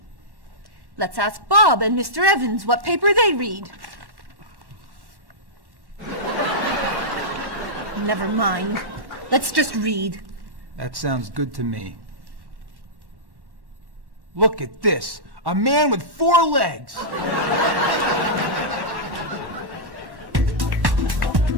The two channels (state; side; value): late; left; 1.1 ms